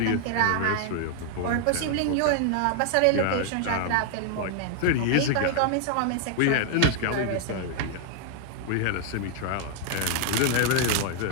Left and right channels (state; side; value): different; both; correlation 0.00